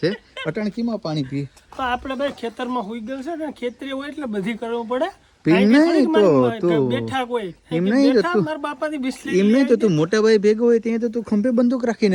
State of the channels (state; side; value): identical; both; correlation 1.00